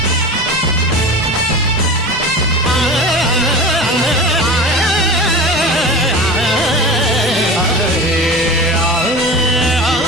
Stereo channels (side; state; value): both; normal; correlation 0.32